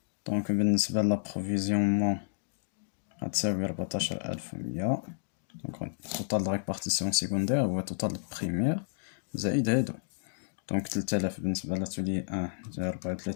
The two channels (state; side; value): silent; right; digital silence